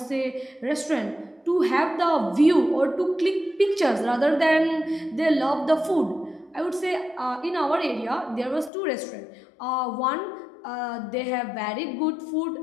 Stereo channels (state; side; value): drops out; right; at 8.7 s